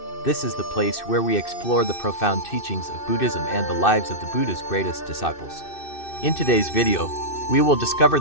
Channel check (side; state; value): right; late; 2.6 ms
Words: This is the place where we explore the profound teachings of Buddhism and the lives of the Buddha's greatest disciples. In today's video, we will discover